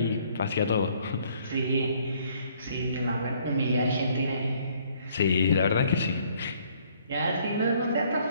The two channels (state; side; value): inverted; both; correlation -0.63